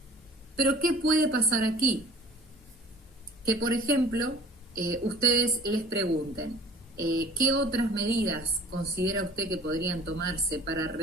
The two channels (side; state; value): both; normal; correlation 0.47